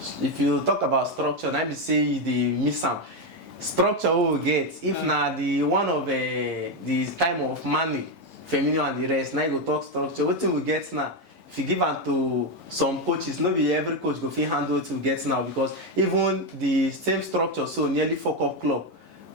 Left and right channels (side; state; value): both; normal; correlation 0.08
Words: if you talk about structure, na be say the miss am. Structure we will get if na the one of the time of money, Firmino and the rest. Now you go talk structure. Wetin we get now? If you give am to some coaches, not be every coach go fit handle it to get now, because even the same structure so nearly fuck up club